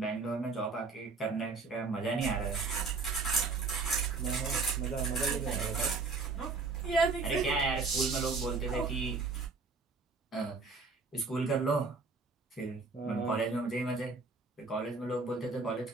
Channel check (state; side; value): quieter; left; 4.2 dB